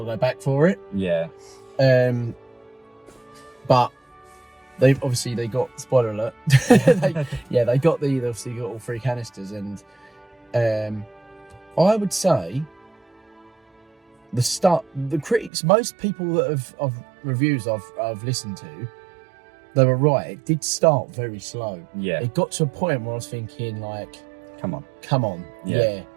back for it. Yeah. But they got, spoiler alert. they got all 3 canisters, and I would say the critics, most people that of reviews I've listened to, they were right. It did start very slow. Yeah. It got to a point where I was thinking, come on. Yeah.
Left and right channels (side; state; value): left; drops out; at 15.5 s